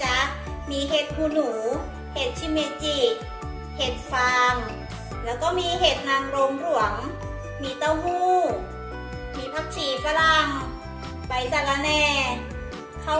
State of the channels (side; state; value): both; identical; correlation 1.00